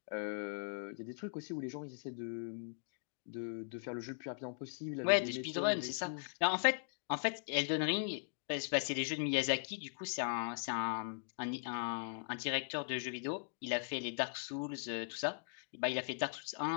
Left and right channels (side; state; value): right; silent; digital silence